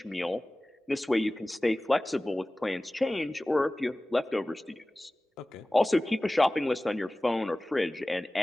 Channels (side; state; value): both; normal; correlation 0.98